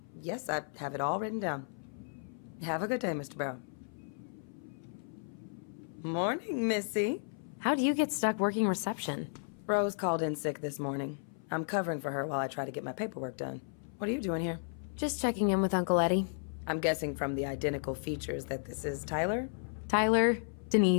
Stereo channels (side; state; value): right; silent; 55 dB below the other